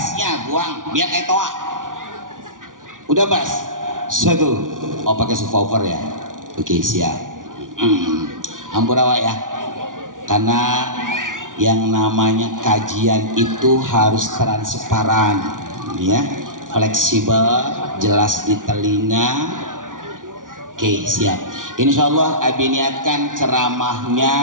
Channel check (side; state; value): left; late; 0.88 ms